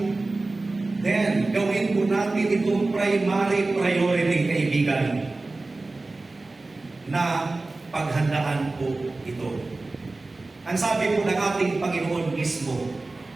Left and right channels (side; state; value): left; quieter; 3.3 dB